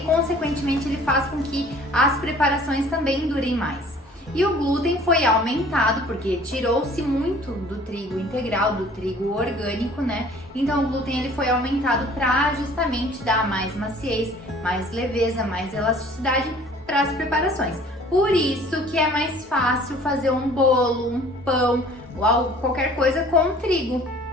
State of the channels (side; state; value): both; normal; correlation 0.51